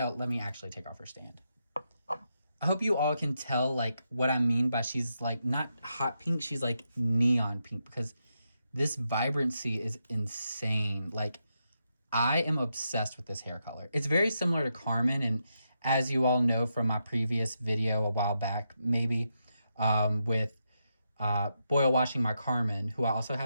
Let me actually take off her stand. I hope you all can tell like what I mean by she's like not hot pink, she's like neon pink because this vibrancy is insane. Like I am obsessed with this hair color. It's very similar to Carmen, and as you all know from my previous video a while back, maybe with boil washing my Carmen, who I also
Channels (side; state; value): both; inverted; correlation -0.84